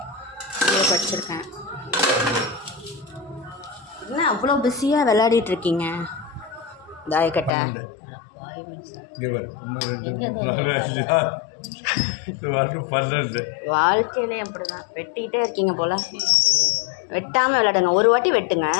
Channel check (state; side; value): drops out; right; at 7.5 s